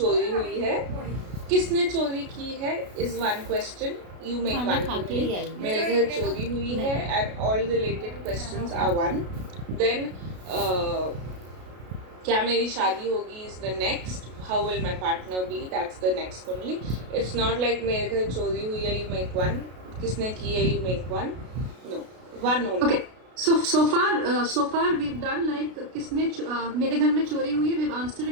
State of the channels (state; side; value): late; left; 33 ms